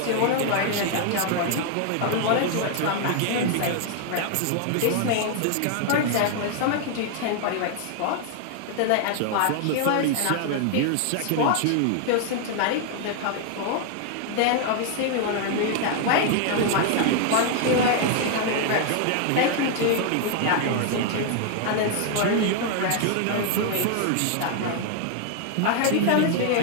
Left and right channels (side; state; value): both; different; correlation 0.00